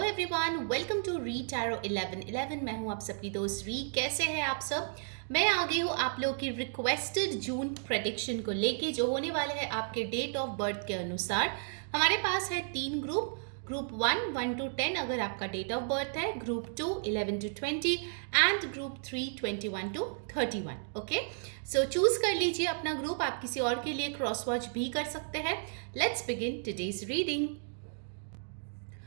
everyone, welcome to re tarot 1111। मैं हूं आप सबकी दोस्त री। कैसे हैं आप सब? मैं आ गई हूं आप लोगों की रिक्वेस्टेड जून प्रेडिक्शन को लेके, जो होने वाले हैं आपके डेट ऑफ बर्थ के अनुसार। हमारे पास है 3 ग्रुप 1 1 to 10 अगर आपका डेट ऑफ बर्थ है, group 2 11 to 20 and group 3 21 to 31। Okay, so choose कर लीजिए अपना ग्रुप। आप किसी और के लिए क्रॉस वॉच भी कर सकते हैं। Let's begin today's reading.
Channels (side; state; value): left; silent; digital silence